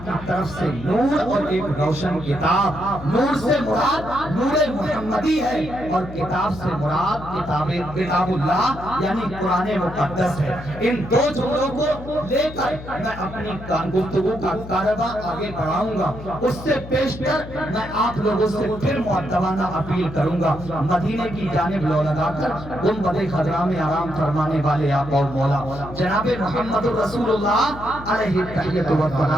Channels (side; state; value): left; noise; hum, 13 dB below the sound